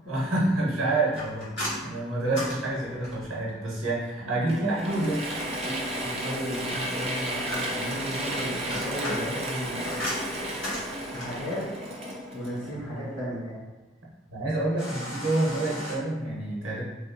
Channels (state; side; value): normal; both; correlation 0.51